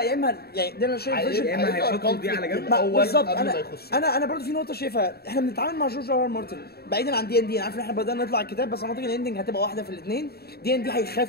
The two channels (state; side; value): late; right; 0.46 ms